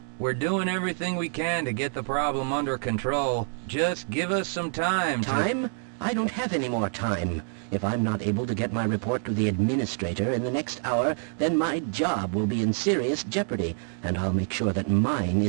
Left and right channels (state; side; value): silent; left; 60 dB below the other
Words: We're doing everything we can to get the problem under control. Just give us some time. Time? I don't have any more time. If I'm not able to get my report to the administrator in the next hour, then my job will be in serious jeopardy, and I'll make sure that mine